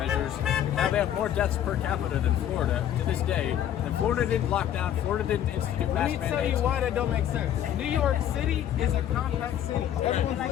Now they have more deaths per capita than Florida to this day. And Florida didn't lock down. Florida didn't institute mask mandates. Let me tell you why that don't make sense. New York City is a compact city. Everyone's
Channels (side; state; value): right; quieter; 10.7 dB